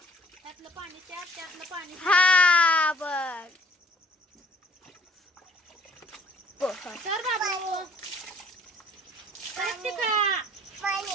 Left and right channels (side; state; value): both; normal; correlation 0.56